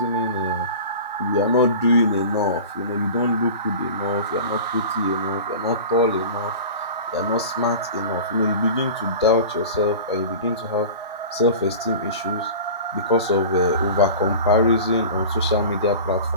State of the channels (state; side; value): inverted; both; correlation -0.36